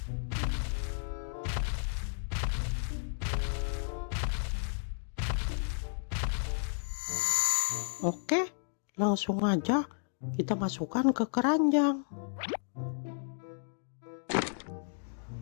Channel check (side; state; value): right; silent; digital silence